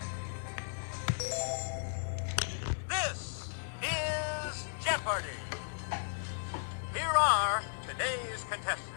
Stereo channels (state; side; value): silent; right; digital silence